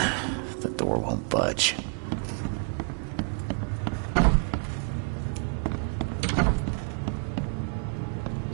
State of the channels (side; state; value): left; quieter; 39.0 dB